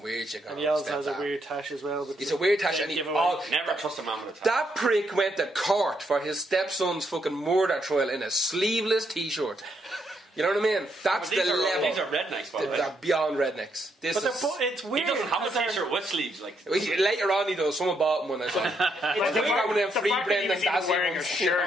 weird shit going And on. he also has a Stepdad. weird tash as well. But It's a weird tash, and he Never trust a man with a that prick went to court for his stepson's fucking murder trial in a sleeveless t-shirt. You know what I mean? That's the level. These are rednecks, by the way. They're beyond rednecks. This But is... it's He weird. doesn't have a 'cause they're- t-shirt with sleeves. Like Later on he does. Someone bought him one. I thought. It's They weird. got one of them The free fact that he Brendan was even Dassey wearing a ones. shirt,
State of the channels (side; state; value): both; normal; correlation 0.76